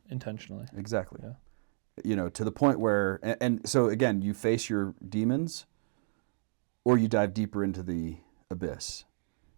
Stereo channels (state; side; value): silent; left; digital silence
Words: intentionally. Exactly. Yeah. To the point where, and so again, you face your demons or you dive deeper into the abyss.